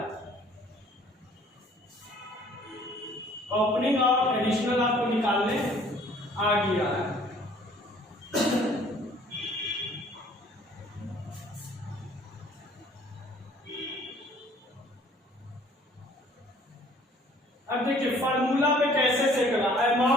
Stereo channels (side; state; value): both; normal; correlation 0.56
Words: ओपनिंग और एडिशनल आपको निकालने आ गया है। अब देखिए फार्मूला पे कैसे से करा,